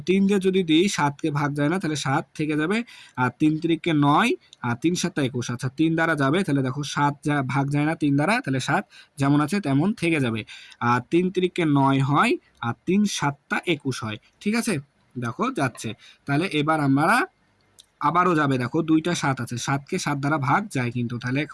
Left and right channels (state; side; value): identical; both; correlation 1.00